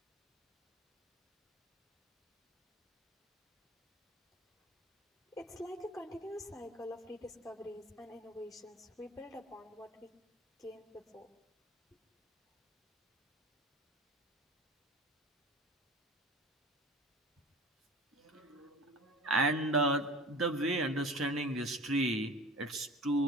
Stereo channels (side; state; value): both; normal; correlation 0.38